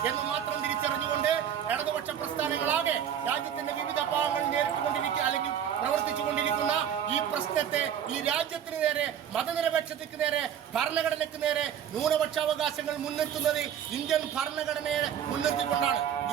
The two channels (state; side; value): quieter; left; 9.2 dB